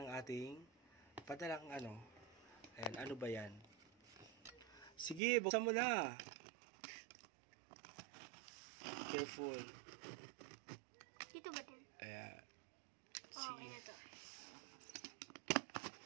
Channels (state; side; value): drops out; left; at 5.2 s